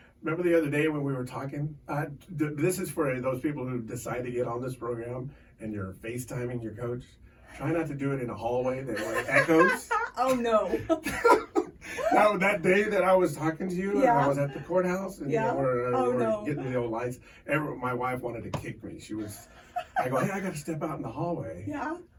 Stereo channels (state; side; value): identical; both; correlation 1.00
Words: Remember the other day when we were talking? This is for those people who decide to get on this program and you're FaceTiming your coach. Try not to do it in a hallway that echoes. Oh, no. That day that I was talking to you, I was at the courthouse, and we're getting the old lights. My wife wanted to kick me. I go, hey, I got to step out in the hallway. Yeah.